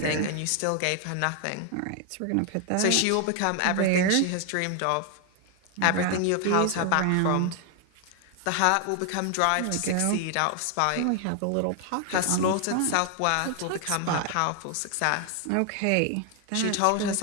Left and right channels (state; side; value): different; both; correlation 0.00